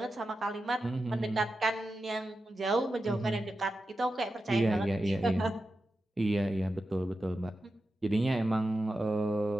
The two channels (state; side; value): normal; both; correlation 0.91